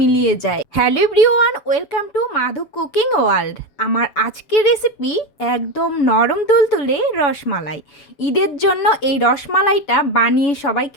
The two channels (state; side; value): late; right; 7.0 ms